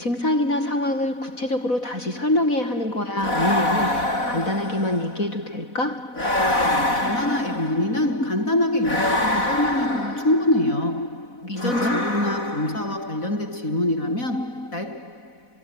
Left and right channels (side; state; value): right; late; 4.1 ms